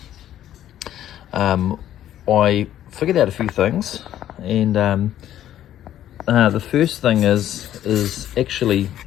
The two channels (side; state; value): right; quieter; 11.8 dB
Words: I figured out a few things, and the first thing is actually